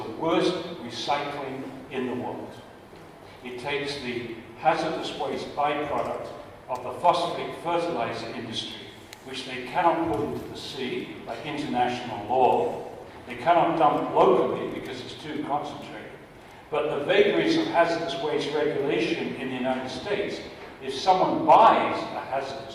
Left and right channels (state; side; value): identical; both; correlation 1.00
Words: worst recycling in the world. It takes the hazardous waste byproduct of the phosphate fertilizer industry, which they cannot put into the sea by international law. They cannot dump locally because it's too concentrated. But the vagaries of hazardous waste regulation in the United States, if someone buys a